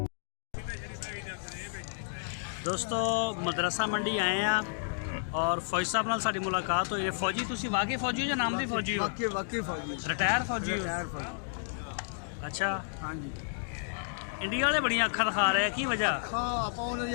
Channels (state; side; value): silent; right; digital silence